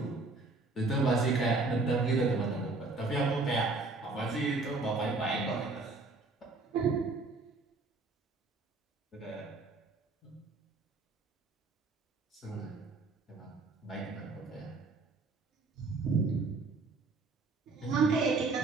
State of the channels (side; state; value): left; quieter; 3.6 dB